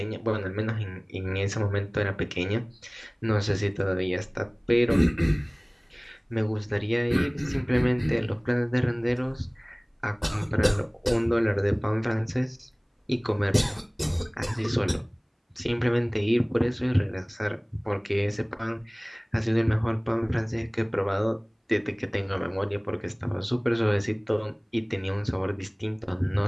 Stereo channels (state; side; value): identical; both; correlation 1.00